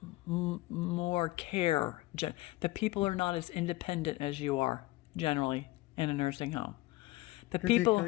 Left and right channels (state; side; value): quieter; right; 19.3 dB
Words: more care. The people are not as independent as you are generally in a nursing home. The people